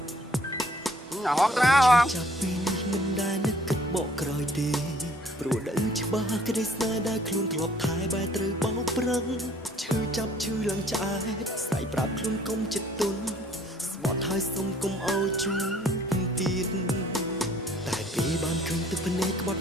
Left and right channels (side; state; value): both; normal; correlation 0.58